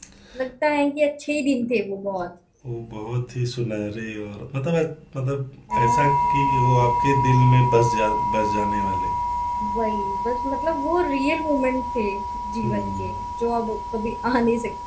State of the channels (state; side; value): identical; both; correlation 1.00